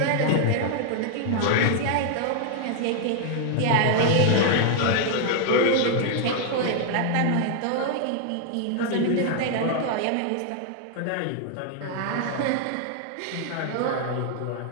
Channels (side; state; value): both; different; correlation 0.00